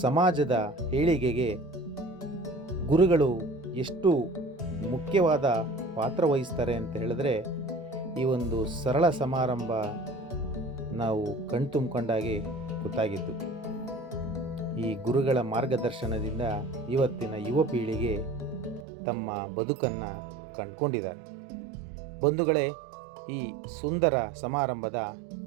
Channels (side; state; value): left; drops out; at 18.9 s